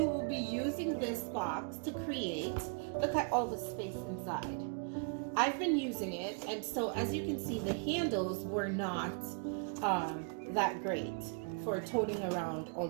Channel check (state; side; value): quieter; left; 38.5 dB